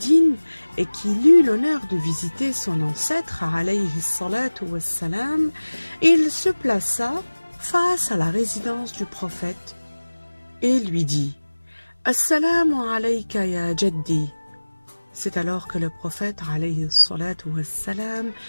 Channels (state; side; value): inverted; both; correlation -1.00